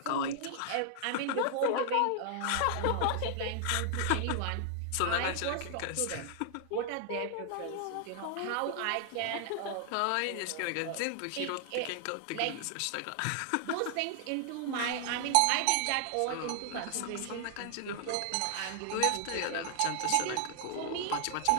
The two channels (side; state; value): both; different; correlation 0.00